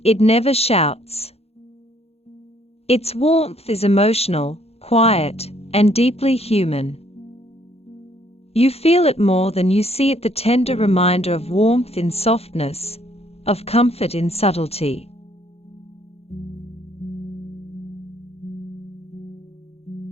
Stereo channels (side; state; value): right; late; 0.29 ms